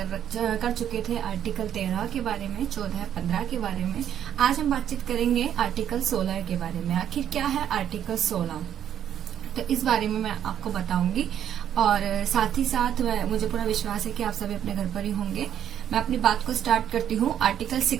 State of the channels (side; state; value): left; quieter; 9.9 dB